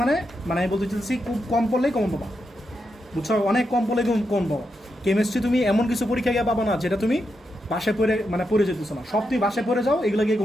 মানে আমি বলতে চাইছি খুব কম পড়লেই কম পাবা, বুঝছো? অনেক কম পড়লে কম পাবা। কেমিস্ট্রি তুমি এমন কিছু পরীক্ষা গিয়ে পাবা না যেটা তুমি বাসায় পড়ে যেতেছো না, সব তুমি বাসায় পড়ে যাও, এগুলো গিয়ে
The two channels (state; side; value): normal; both; correlation 0.85